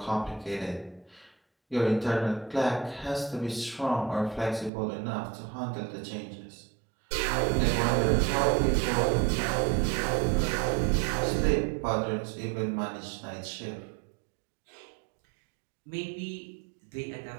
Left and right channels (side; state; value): left; drops out; at 4.7 s